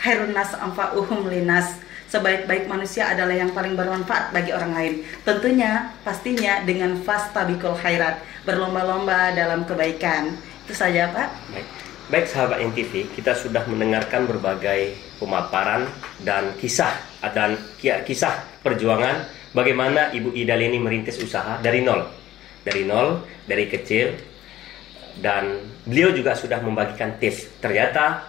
khairun nas anfa'uhum linas, sebaik-baik manusia adalah yang paling bermanfaat bagi orang lain. Tentunya pastinya dengan fastabiqul khairat, berlomba-lomba dalam kebaikan. Itu saja Pak. Baik sahabat NTV, kita sudah mendengarkan berbagai pemaparan dan kisah perjuangan bagaimana Ibu Ida Leni merintis usaha dari nol, dari kecil, dan beliau juga sudah membagikan tips. Ternyata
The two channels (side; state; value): right; quieter; 14.0 dB